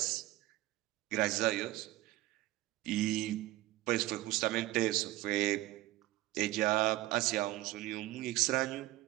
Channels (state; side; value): quieter; left; 16.8 dB